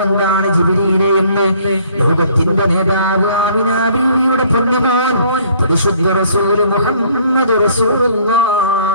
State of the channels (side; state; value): both; inverted; correlation -0.59